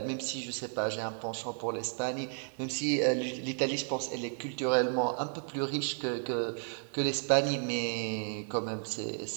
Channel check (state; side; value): silent; left; 56 dB below the other